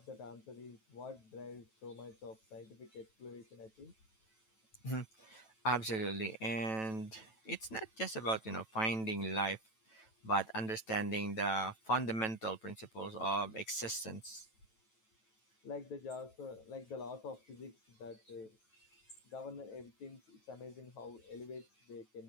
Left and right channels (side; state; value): right; late; 9.1 ms